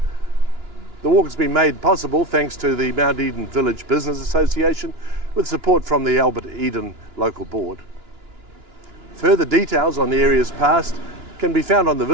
The walk has been made possible thanks to the Mount Eden Village Business Association with support from the Albert Eden Local Board. Further details on the area's past can be found on the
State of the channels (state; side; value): late; left; 2.9 ms